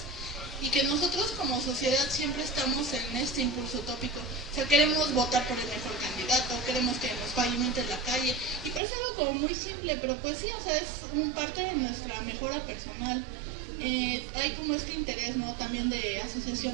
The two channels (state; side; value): drops out; left; at 8.8 s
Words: y que nosotros como sociedad siempre estamos en este impulso utópico. O sea, queremos votar por el mejor candidato, queremos que nos pavimenten la calle, y parece algo como muy simple, pero pues sí, o sea, es un parte de nuestra mejora personal. Hay como este interés, ¿no? También de